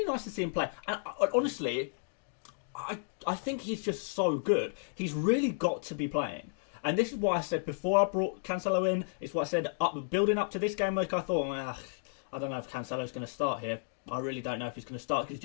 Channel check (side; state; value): right; silent; digital silence